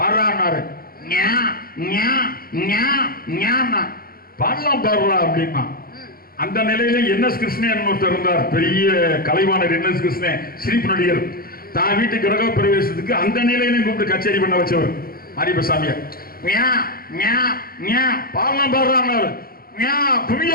பாடலாம் பாடுறா அப்படின்னா. அந்த நிலையில என்எஸ் கிருஷ்ணன் ஒருத்தர் இருந்தார், பெரிய கலைவாணர் என்எஸ் கிருஷ்ணன், சிரிப்பு நடிகர். தான் வீட்டு கிரக பிரவேசத்துக்கு அந்த நிலையிலையும் கூப்பிட்டு கச்சேரி பண்ண வச்சவர் மாரியப்ப சாமியார். பாடலாம் பாடுறான்னாரு.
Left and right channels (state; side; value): late; right; 0.43 ms